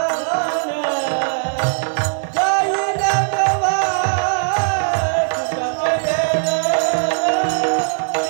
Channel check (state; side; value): silent; left; digital silence